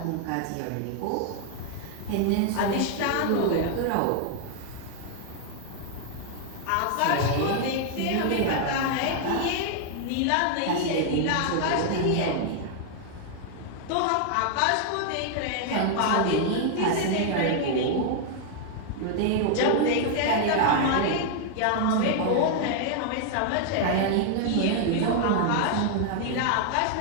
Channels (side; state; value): both; different; correlation 0.00